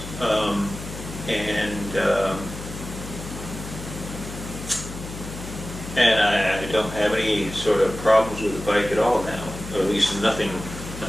and I don't have any sort of problems with the bike at all now, or at least nothing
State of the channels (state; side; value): noise; left; hum, 11 dB below the sound